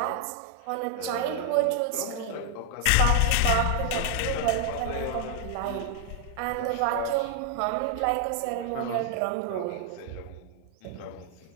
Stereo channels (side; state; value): both; different; correlation 0.00